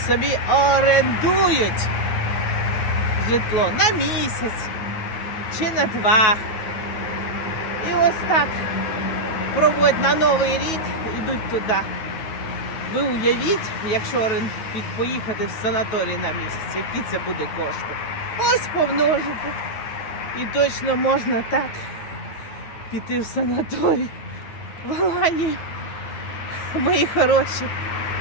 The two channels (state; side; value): late; right; 9.3 ms